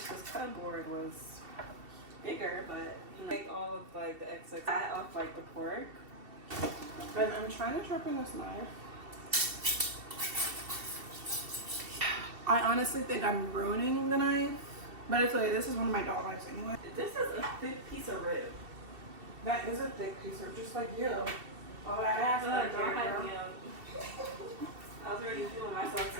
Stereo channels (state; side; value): late; left; 2.7 ms